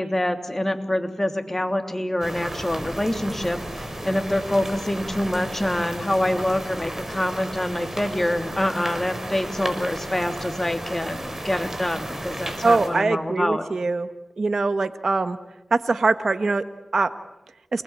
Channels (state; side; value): normal; both; correlation 0.96